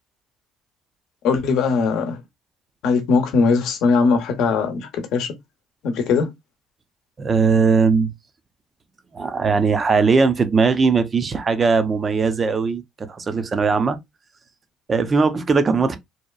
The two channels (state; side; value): normal; both; correlation 0.73